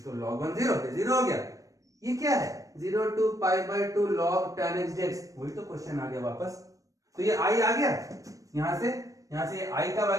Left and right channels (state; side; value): late; left; 0.16 ms